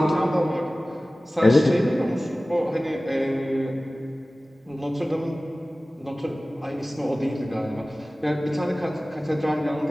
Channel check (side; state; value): both; normal; correlation 0.97